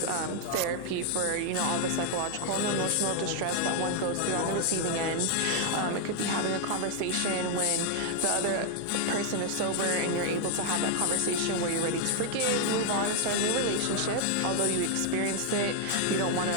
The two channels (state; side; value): different; both; correlation 0.00